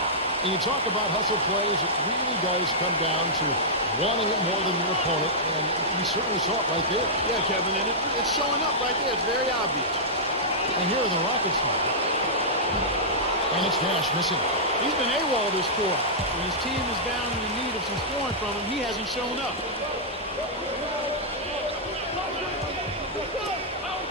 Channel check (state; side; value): normal; both; correlation -0.12